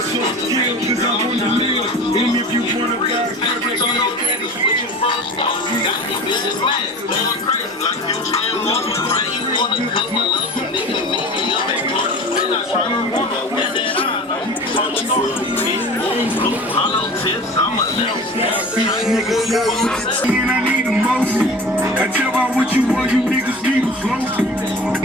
If you wanna die, and I need emotion. I tell about what you want, you niggas need a flow.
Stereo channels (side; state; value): both; normal; correlation 0.37